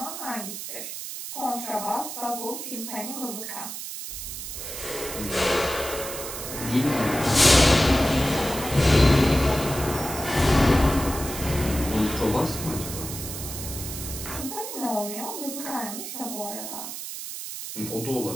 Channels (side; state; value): right; noise; hiss, 8 dB below the sound